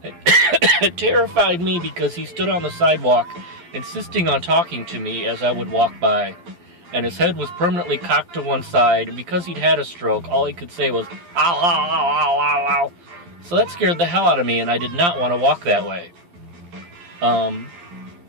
It terrified me because he stood on the sidewalk, insisting on talking to me as I would walk by, and his head was permanently cocked to one side. And because he'd had a stroke, all he could say was "ow, ow, ow, ow, ow, ow." So that scared the hell out of me, and I did not want to walk that way.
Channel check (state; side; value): late; left; 12 ms